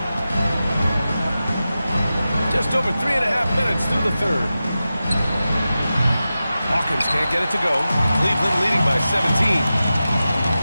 Just over 3.5 minutes through the third. Hawkins can't get it to go. Cleveland leading by 17.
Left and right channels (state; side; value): inverted; both; correlation -0.93